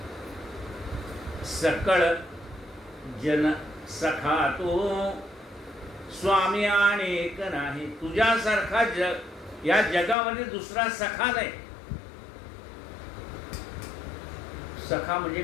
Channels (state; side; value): drops out; right; at 10.2 s